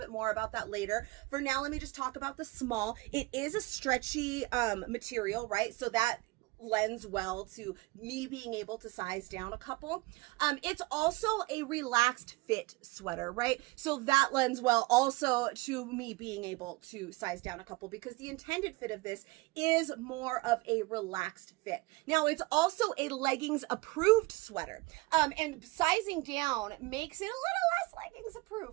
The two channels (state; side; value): quieter; left; 23.0 dB